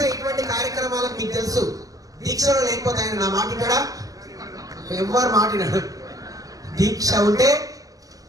ఇటువంటి కార్యక్రమాలకు మీకు తెలుసు. దీక్షలో లేకపోతే ఆయన నా మాటినాడా? ఎవరు మాటినాడు? దీక్ష ఉంటే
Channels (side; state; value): left; late; 0.17 ms